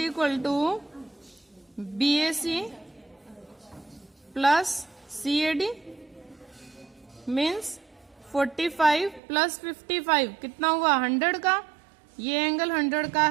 to BAC plus CAD means 45 plus 55 कितना हुआ, 100 का। ये एंगल 100 का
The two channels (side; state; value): left; drops out; at 9.2 s